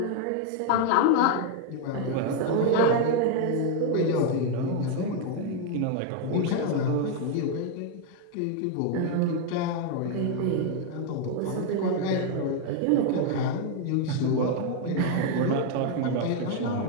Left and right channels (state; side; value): different; both; correlation 0.00